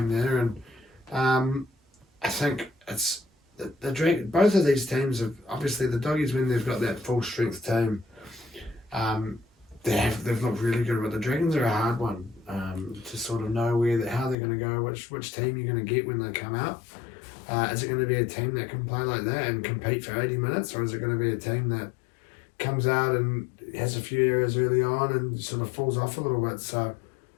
there, and I think it's the Dragons. Both of these teams have obviously the Doggies, when they've got that full strength team. They've looked really good, but the Dragons are a hard one to sort of know how they're going to go, which team you're going to get when they come out. Is it going to be a team that can play like that and compete for 80 minutes, or is it going to be a team that comes out and has a few errors early on and sort of falls off a little bit? So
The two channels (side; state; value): right; drops out; at 14.4 s